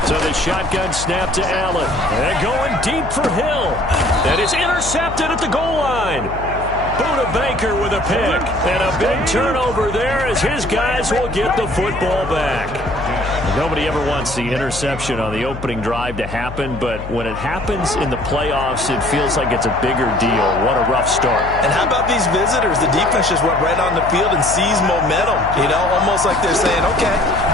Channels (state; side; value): noise; left; hum, 10 dB below the sound